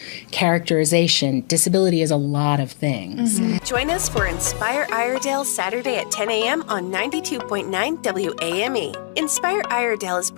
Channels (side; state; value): right; silent; 65 dB below the other